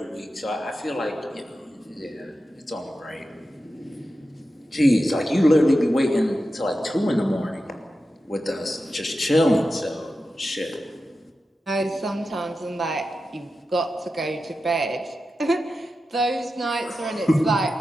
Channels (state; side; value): normal; both; correlation 0.91